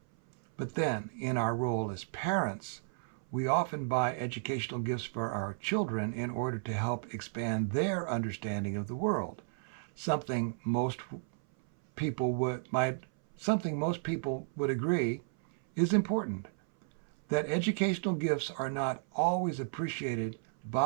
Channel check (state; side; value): silent; left; 56 dB below the other